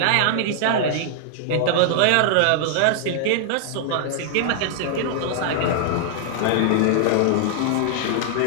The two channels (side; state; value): both; different; correlation -0.01